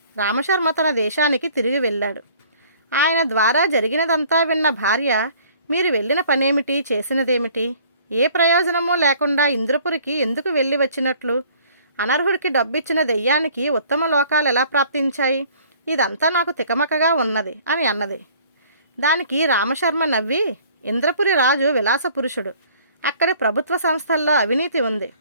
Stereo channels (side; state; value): both; inverted; correlation -0.54